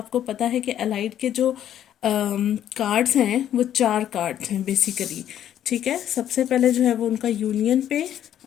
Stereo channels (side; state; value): right; quieter; 10.8 dB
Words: पता है कि अलाइट के जो कार्ड्स हैं वो 4 कार्ड्स हैं बेसिकली। ठीक है, सबसे पहले जो है वो उनका यूनियन पे